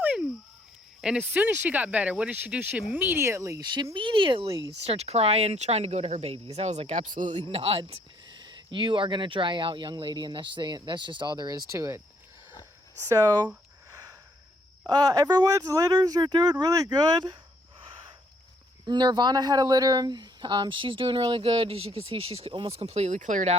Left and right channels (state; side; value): normal; both; correlation 0.67